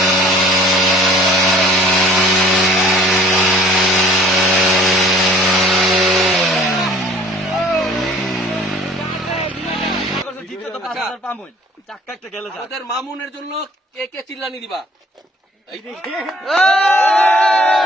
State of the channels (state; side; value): normal; both; correlation 0.52